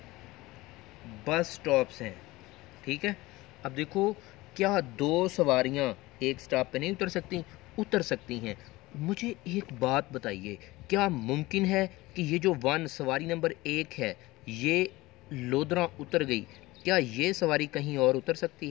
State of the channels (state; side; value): quieter; right; 20.0 dB